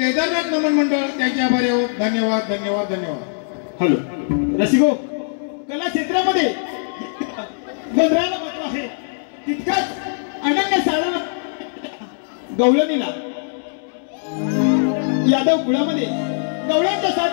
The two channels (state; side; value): silent; right; digital silence